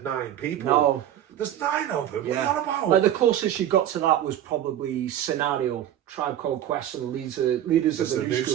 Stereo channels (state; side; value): quieter; left; 11.2 dB